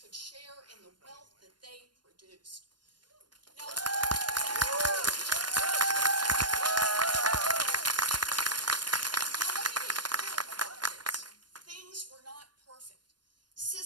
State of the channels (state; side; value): late; left; 0.71 ms